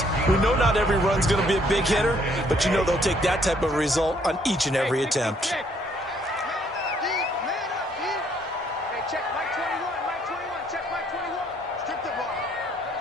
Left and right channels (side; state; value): both; normal; correlation 0.66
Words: We know not every run's going to be a big hitter, but you know they'll take that type of result on each and every attempt. check Mike 21, Mike 21, check Mike 21. Strip the ball.